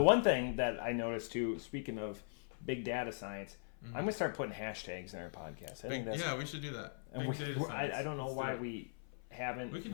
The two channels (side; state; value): right; silent; 51 dB below the other